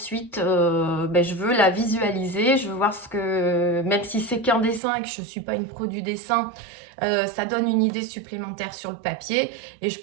je veux la visualiser, je veux voir ce que, même si c'est qu'un dessin et que je ne suis pas une pro du dessin, ça donne une idée supplémentaire sur le papier et je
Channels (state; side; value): drops out; left; at 4.8 s